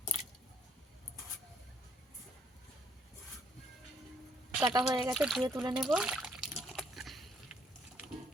কাটা হয়ে গেছে, ধুয়ে তুলে নেব।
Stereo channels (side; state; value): both; normal; correlation 0.65